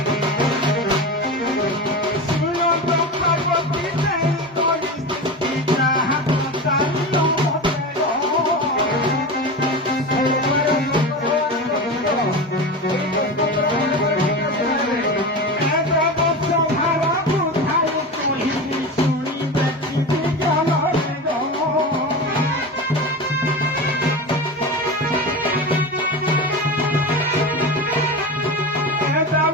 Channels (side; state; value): both; normal; correlation 0.26